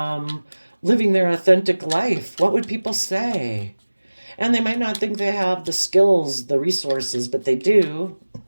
living their authentic life. What would people say? And they might not think they have the skills, the resources, but they do.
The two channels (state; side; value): inverted; both; correlation -1.00